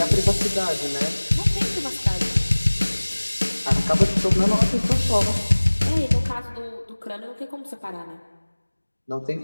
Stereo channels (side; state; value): both; inverted; correlation -1.00